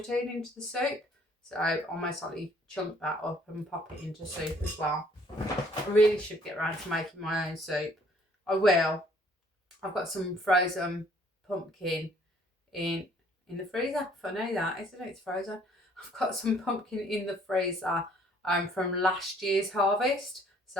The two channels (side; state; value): both; normal; correlation 0.60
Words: into the soup. So I'll most likely chunk that up and pop it into soup as well. I really should get around to making my own soup. I will. I've got some frozen pumpkin in the freezer. Funny that, isn't it? It's frozen. I've got some pumpkin in the freezer from last year's harvest.